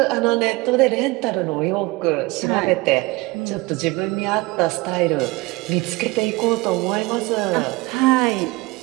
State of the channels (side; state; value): left; quieter; 23.1 dB